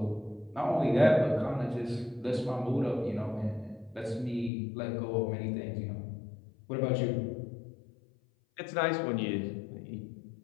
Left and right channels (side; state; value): right; drops out; at 4.5 s